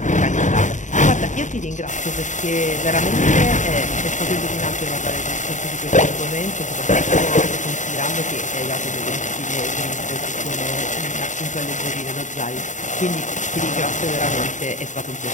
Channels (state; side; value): late; right; 0.36 ms